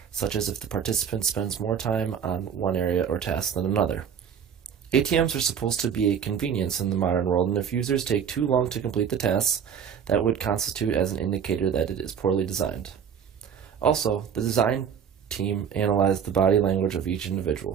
such as if the participant spends more time on one area or task than another. ATMs are supposed to be a convenience in the modern world, and if users take too long to complete the tasks, that would constitute as an indicator that it is poorly designed. Also, the design team analyzed the body language of each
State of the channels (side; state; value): left; quieter; 7.8 dB